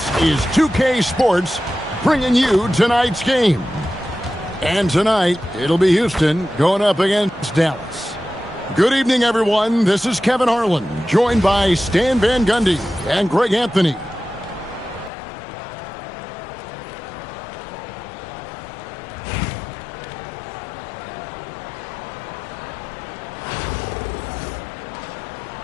is 2K Sports bringing you tonight's game. And tonight, it'll be Houston going up against Dallas. Good evening, everyone. This is Kevin Harlan, joined by Stan Van Gundy and Greg Anthony.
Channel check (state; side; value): drops out; right; at 15.1 s